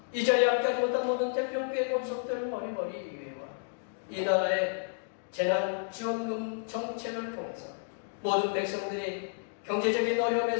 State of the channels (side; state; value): right; silent; digital silence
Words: 이 자리에 함께하지 못한 모든 태평교회 권속들 머리머리 위해와 이 나라의 재난지원금 정책을 통해서 모든 백성들이 경제적인